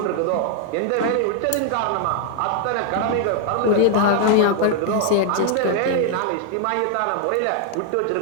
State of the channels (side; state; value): both; different; correlation 0.00